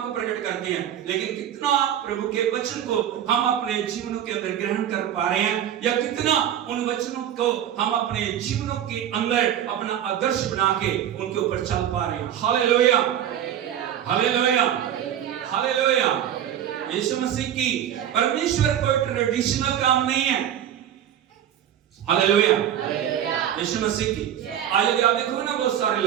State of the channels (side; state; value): left; quieter; 10.4 dB